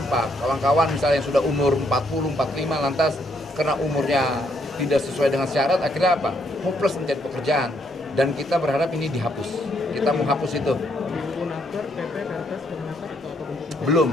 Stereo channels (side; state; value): both; normal; correlation 0.73